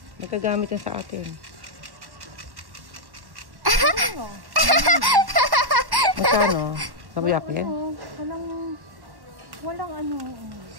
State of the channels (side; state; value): left; late; 1.1 ms